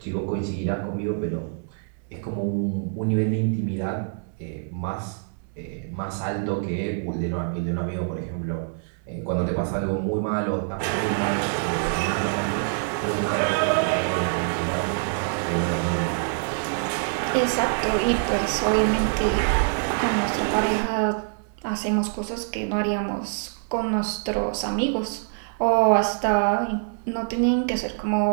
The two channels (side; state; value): left; silent; 62 dB below the other